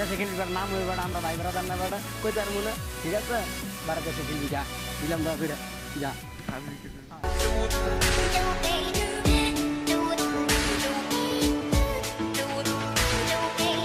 দেশে খেলবি বেটা, নাম হয়ে বেটা, আমরা ভাই বেড়াদার না বেটা, কই তার মনে, ঠিক আছে? বাইরের দেশে খেলবি, যা দিলাম দোয়া করে, যা। আমি কিছু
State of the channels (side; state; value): both; identical; correlation 1.00